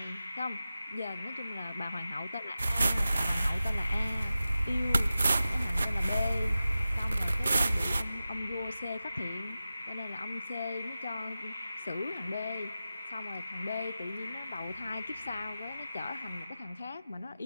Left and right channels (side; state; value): both; inverted; correlation -0.94